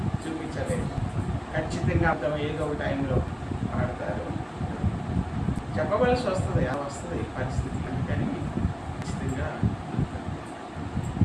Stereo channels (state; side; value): identical; both; correlation 1.00